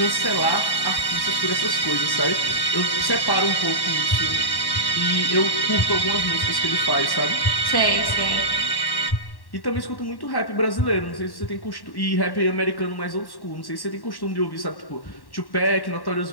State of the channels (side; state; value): right; late; 1.1 ms